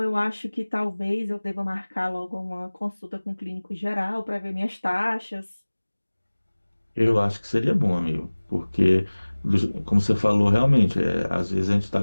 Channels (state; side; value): inverted; both; correlation -1.00